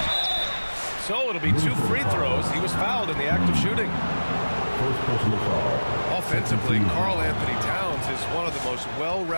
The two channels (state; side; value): inverted; both; correlation -1.00